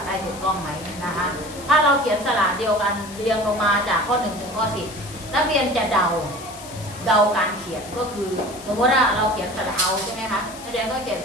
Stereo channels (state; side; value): noise; left; hiss, 16 dB below the sound